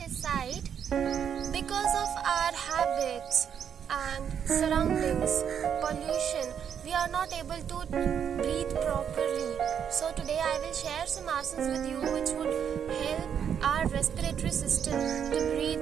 because of our habits and surroundings, pollution, we are not able to breathe properly. So today I will share some asanas with you which would help our respiratory system to breathe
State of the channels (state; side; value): quieter; left; 8.1 dB